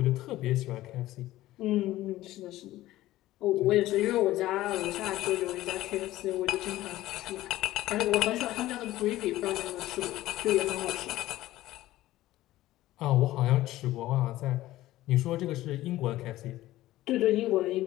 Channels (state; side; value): quieter; right; 15.8 dB